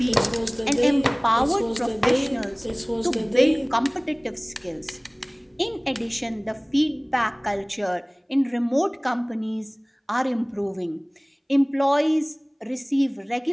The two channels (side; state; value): both; identical; correlation 1.00